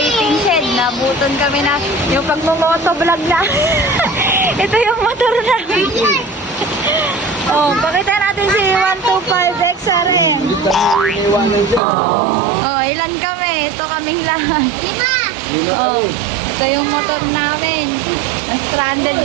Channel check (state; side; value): drops out; left; at 11.8 s